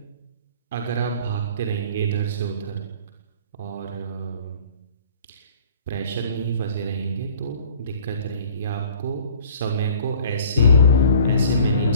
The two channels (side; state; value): both; inverted; correlation -0.50